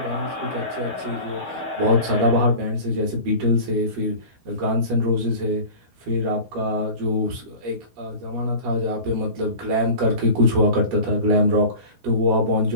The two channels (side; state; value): left; late; 12 ms